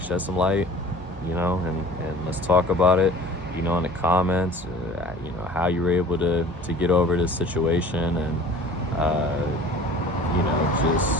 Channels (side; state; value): both; normal; correlation 0.44